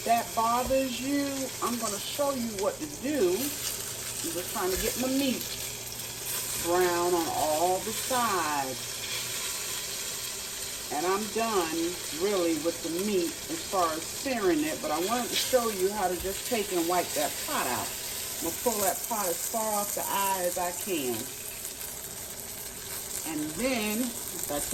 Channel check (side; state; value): right; noise; rumble, 25 dB below the sound